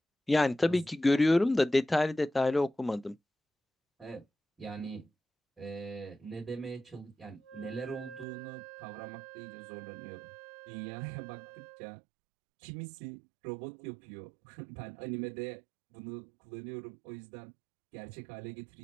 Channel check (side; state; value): left; drops out; at 8.2 s